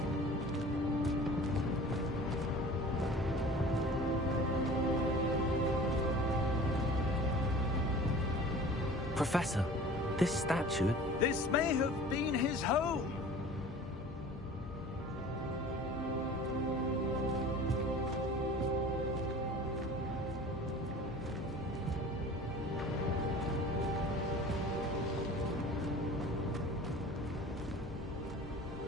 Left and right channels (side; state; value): both; normal; correlation 0.42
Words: Professor, this statue... This may have been his home.